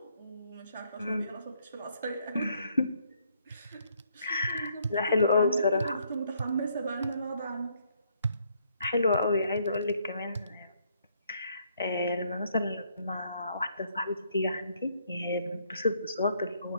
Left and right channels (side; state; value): both; inverted; correlation -0.70